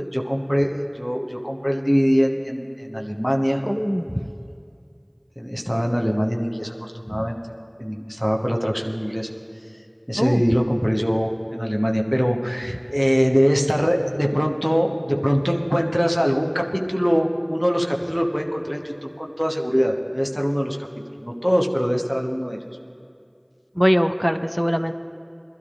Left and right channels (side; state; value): both; identical; correlation 1.00